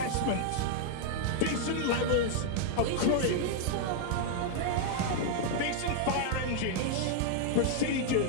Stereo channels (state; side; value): different; both; correlation 0.00